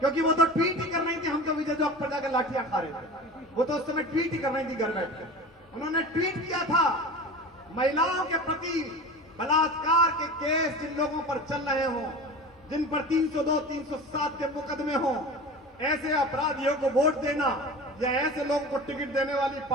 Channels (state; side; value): normal; both; correlation 0.34